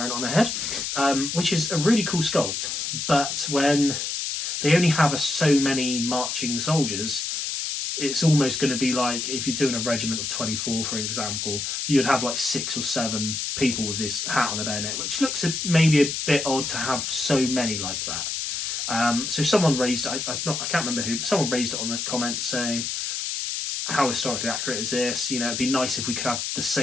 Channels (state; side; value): noise; left; hiss, 3 dB below the sound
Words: it on their head, which is a really cool sculpt. But when they only have so many marching soldiers, it's almost going to be like if you're doing a regiment of 24, for example, you'd have like 6 or 7 people with this hat on the bayonet, which looks maybe a bit odd to have so many like that. So someone raised, I can't remember who, but someone raised it on the comments saying, how historically accurate is this? You know, it'd be nice if we could have the